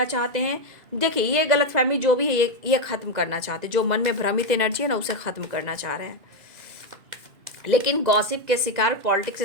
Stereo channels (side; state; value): left; late; 2.0 ms